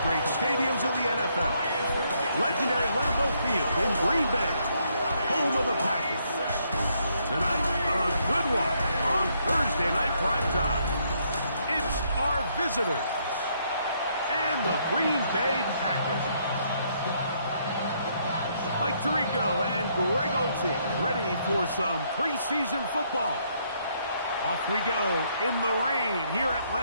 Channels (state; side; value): inverted; both; correlation -0.72